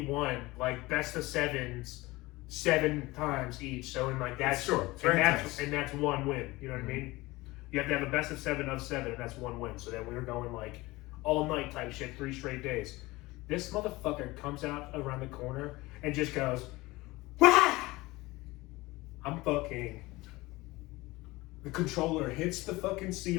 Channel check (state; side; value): quieter; right; 20.7 dB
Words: like best of 7s, 7 times each. So in like that's and that's one win. You know what I mean? You have to have a best of 7 of 7, and that's one win. So then we were going like all night type shit, 3 straight days. This motherfucker comes out around the corner and just goes, "Wah!" I'm fucking. The controller hits the fucking